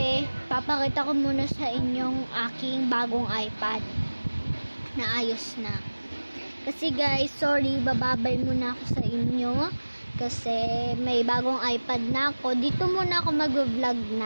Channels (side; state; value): both; inverted; correlation -1.00